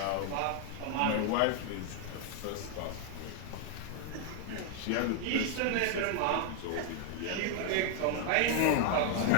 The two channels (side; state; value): both; different; correlation 0.00